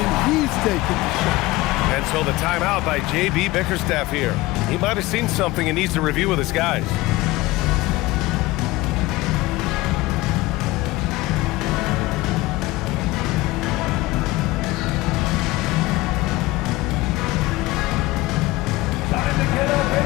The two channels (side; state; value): right; quieter; 19.7 dB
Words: he's taking the shot. And so the timeout by J.B. Bickerstaff here. He might have seen something and needs to review with his guys.